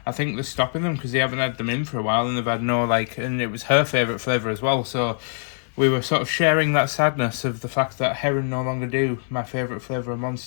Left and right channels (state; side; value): silent; right; digital silence